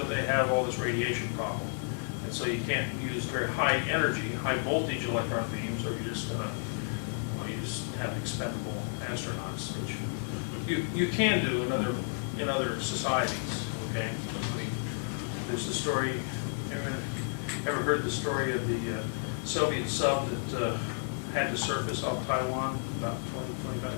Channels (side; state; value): right; silent; 55 dB below the other